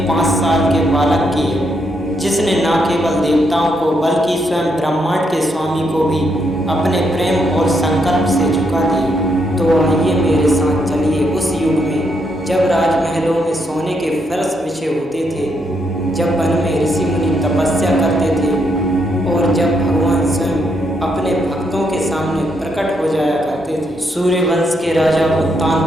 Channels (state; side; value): normal; both; correlation 0.78